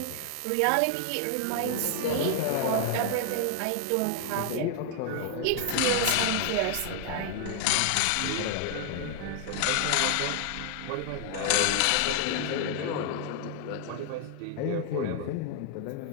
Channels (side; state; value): both; different; correlation 0.00